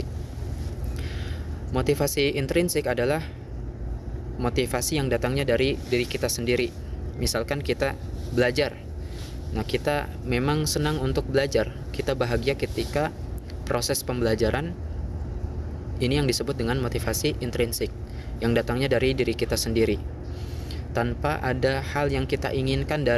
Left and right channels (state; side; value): identical; both; correlation 1.00